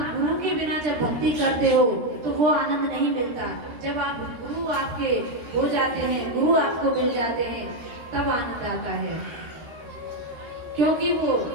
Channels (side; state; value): left; late; 13 ms